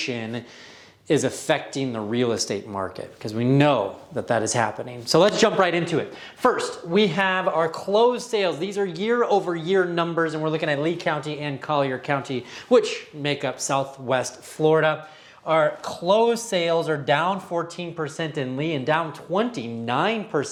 is affecting the real estate market, because we know that that is happening. So let's jump right into it. First, we have our closed sales. These are year over year numbers, and we're looking at Lee County and Collier County, which make up Southwest Florida. Our closed sales are down 14% in Lee and down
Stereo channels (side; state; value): both; identical; correlation 1.00